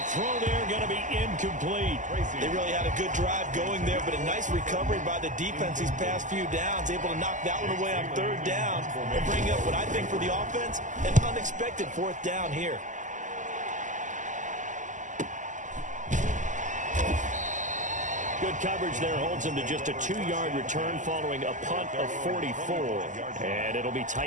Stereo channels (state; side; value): late; left; 0.37 ms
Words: throw there going to be incomplete. They really had a good drive going there, but a nice recovery by the defense these past few downs, able to knock that one away on 3rd down and bring up what I think for the offense, an unexpected 4th down here. Good coverage there holds him to just a 2-yard return following a punt of 44. And it'll be